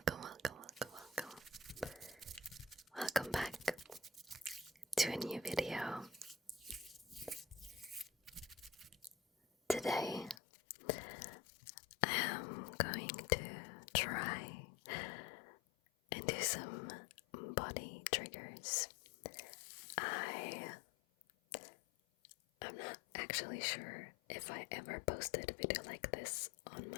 welcome, welcome, welcome. Welcome back to a new video. Today, I am going to try and do some body triggers. I'm not actually sure if I ever posted a video like this on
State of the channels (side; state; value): right; drops out; at 10.4 s